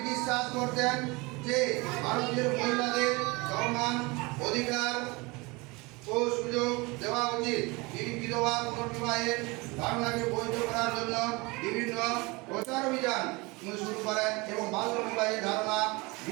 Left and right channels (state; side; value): quieter; left; 25.5 dB